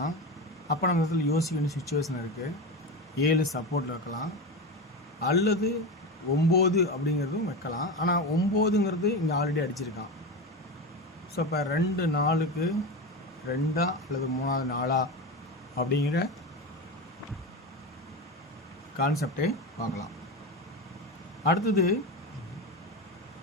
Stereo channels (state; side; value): normal; both; correlation 0.21